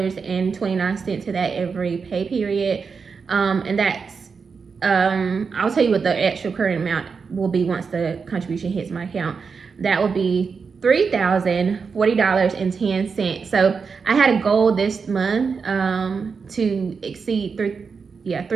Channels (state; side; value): quieter; left; 5.4 dB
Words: to that every pay period, and that's I'll tell you what the actual current amount will be once the contribution hits my account. That will be $3,040.10. So I had a goal this month to exceed